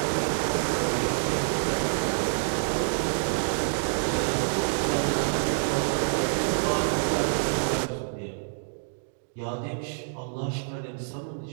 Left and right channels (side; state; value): left; silent; digital silence